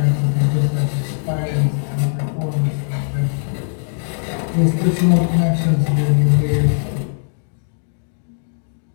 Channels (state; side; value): silent; right; digital silence